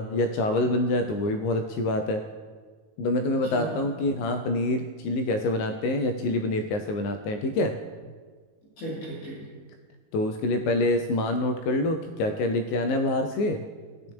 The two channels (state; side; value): late; right; 19 ms